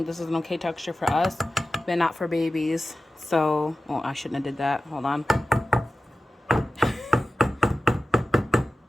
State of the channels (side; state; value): both; normal; correlation 0.94